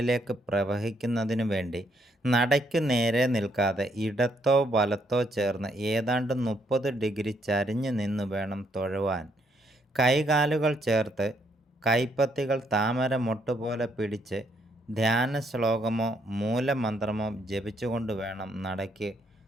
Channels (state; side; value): normal; both; correlation 0.72